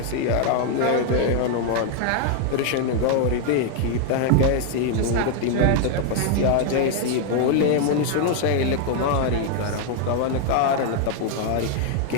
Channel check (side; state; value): both; different; correlation 0.00